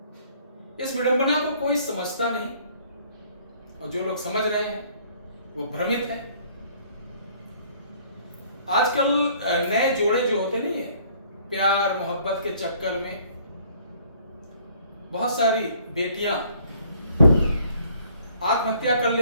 इस विडंबना को कोई समझता नहीं और जो लोग समझ रहे हैं वो भ्रमित है। आजकल नए जोड़े जो होते नहीं है, प्यार मोहब्बत के चक्कर में बहुत सारी बेटियां आत्महत्या कर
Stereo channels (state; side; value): inverted; both; correlation -0.59